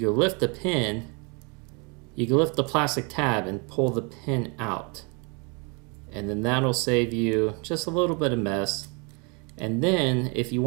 lift the pin, you can lift the plastic tab and pull the pin out. And then that'll save you just a little bit of mess. And then if you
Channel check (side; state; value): left; quieter; 32.6 dB